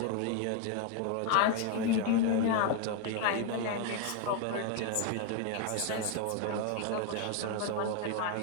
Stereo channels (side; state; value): both; different; correlation 0.01